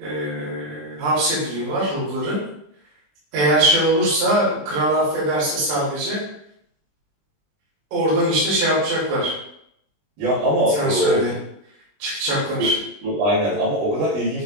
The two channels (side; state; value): left; late; 20 ms